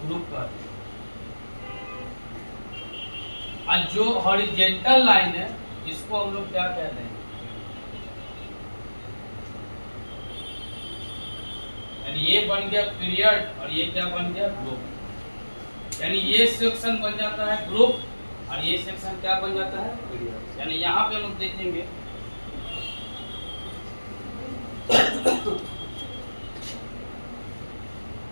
ग्रुप कहते हैं। और जो हॉरिजॉन्टल लाइन है इसको हम लोग क्या कहते हैं, यानी ये बन गया पीरियड और ये क्या बन गया, ग्रुप। यानी ये सेक्शन बन जाता है ग्रुप और ये सेक्शन क्या बन जाता है, पीरियड। यानी यहाँ पे हम लोग देखेंगे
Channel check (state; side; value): inverted; both; correlation -1.00